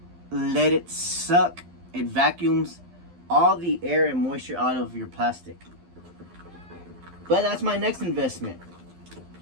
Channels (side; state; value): left; late; 12 ms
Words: let it suck. It vacuums all the air and moisture out of your plastic. But that's my next investment.